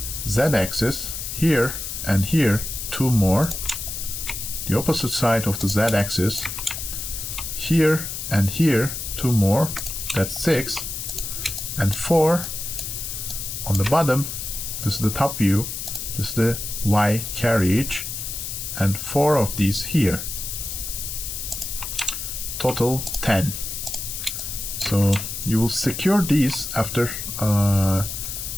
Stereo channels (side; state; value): left; noise; hiss, 6 dB below the sound